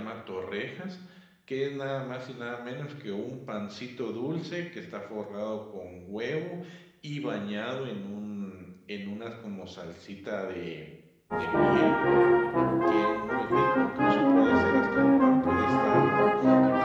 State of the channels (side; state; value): both; identical; correlation 1.00